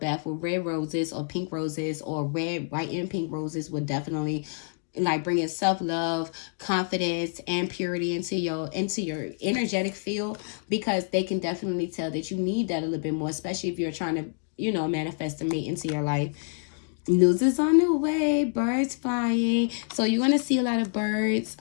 with red roses or pink roses, or red, white, and pink roses would definitely, like, bringing self-love, confidence, and purity into your energetic field, because they can definitely tell that you need that a little bit more, especially if you're trying to, you know, manifest a mate into your life. News is on the way, birds flying. So you're going to see a lot of birds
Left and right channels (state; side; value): silent; right; 58 dB below the other